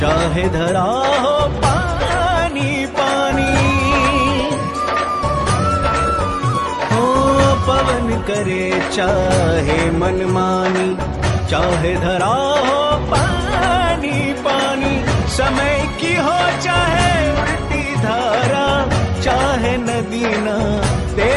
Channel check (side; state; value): both; identical; correlation 1.00